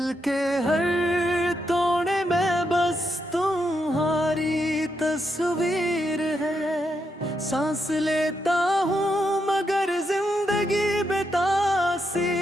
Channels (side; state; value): both; normal; correlation 0.81